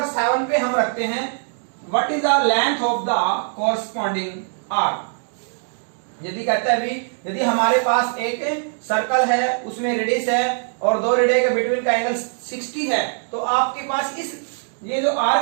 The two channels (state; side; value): silent; left; digital silence